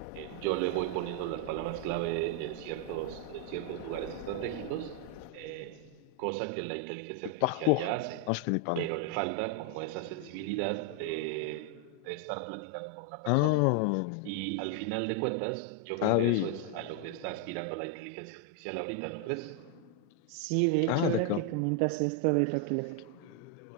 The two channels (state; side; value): different; both; correlation 0.01